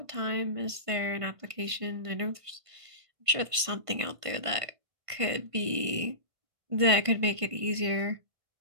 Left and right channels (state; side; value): late; left; 1.5 ms